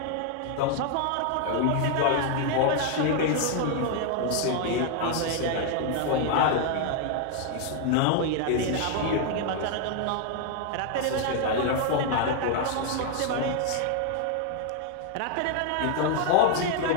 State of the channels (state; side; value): different; both; correlation 0.00